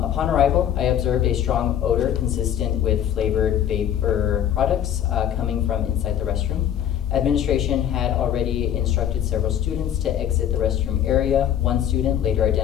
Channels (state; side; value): quieter; right; 10.0 dB